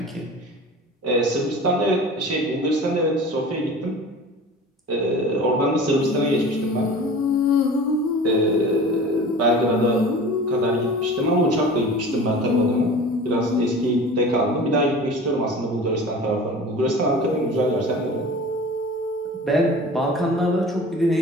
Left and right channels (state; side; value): normal; both; correlation 0.39